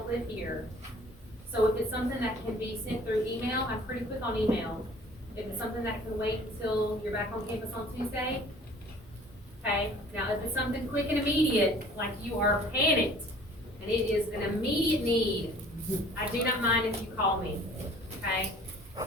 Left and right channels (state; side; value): normal; both; correlation 0.51